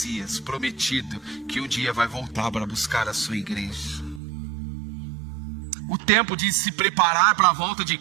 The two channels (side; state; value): left; drops out; at 4.2 s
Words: prometido, que um dia vai voltar para buscar a sua igreja. O tempo de se preparar para a volta de